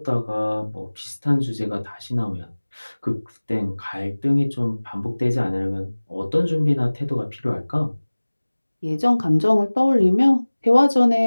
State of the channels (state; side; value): inverted; both; correlation -1.00